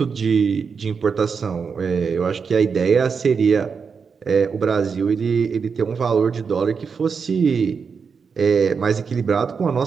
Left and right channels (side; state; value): left; quieter; 5.7 dB